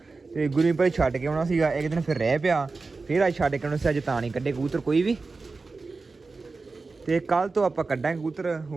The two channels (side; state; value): left; quieter; 4.0 dB